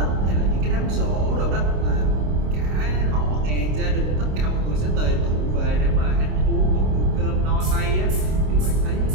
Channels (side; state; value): left; late; 26 ms